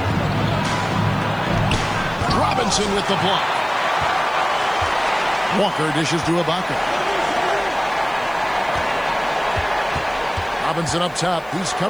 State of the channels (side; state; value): left; noise; hiss, 27 dB below the sound